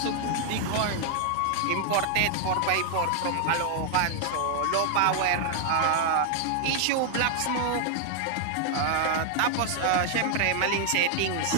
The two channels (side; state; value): both; different; correlation 0.00